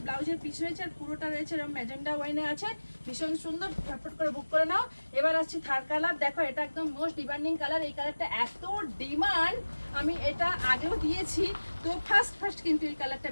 ব্লাউজের পিস রয়েছে, আর পুরোটা রয়েছে এরকম ম্যাজেন্ডা ওয়াইনে আছে। ভীষণ সুন্দর, ঝটপট করে বুক করে নাও। এবার আসছি থার্ড কালার। দেখো এটা একদম মোস্ট ডিমান্ডিং কালার, এই কালারটা এত ডিমান্ড, আমি এটা আগেও দিয়েছি, তো ফার্স্ট কিন্তু এই কালারটা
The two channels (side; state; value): both; inverted; correlation -1.00